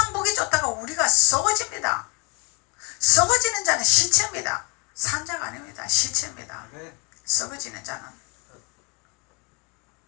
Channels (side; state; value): right; quieter; 31.9 dB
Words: 보기 좋다가 우리가 썩어집니다. 썩어지는 자는 시체입니다. 산자가 아닙니다. 시체입니다. 썩어지는 자는.